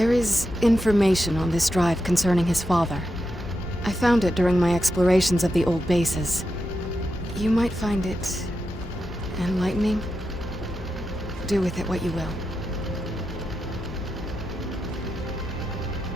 is information on this drive concerning his father. I found it during my explorations of the old bases. You might find it enlightening. Do with it what you will.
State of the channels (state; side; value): normal; both; correlation 0.87